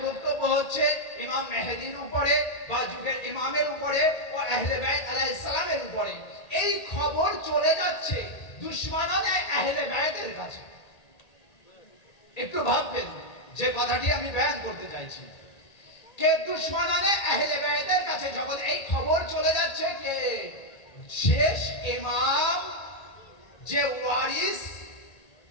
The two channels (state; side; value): late; right; 1.8 ms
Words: বক্তব্য হচ্ছে ইমাম মেহেদির উপরে বা যুগের ইমামের উপরে ও আহলে বাইত আলাইহিস সালামের উপরে, এই খবর চলে যাচ্ছে দুশমনানে আহলে বাইতের কাছে। একটু ভাববেন যে কথাটি আমি বয়ান করতে চাইছি, কে দুশমনানে আহলে বাইতের কাছে যখন এই খবর চলে যাচ্ছে কে শেষ ইমাম যে ওয়ারিস